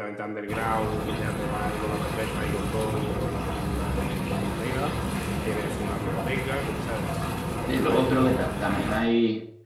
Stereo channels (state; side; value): identical; both; correlation 1.00